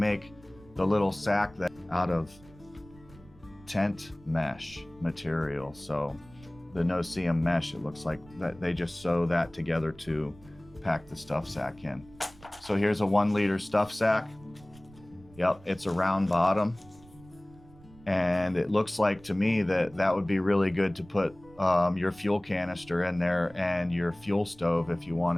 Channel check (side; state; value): right; noise; rumble, 24 dB below the sound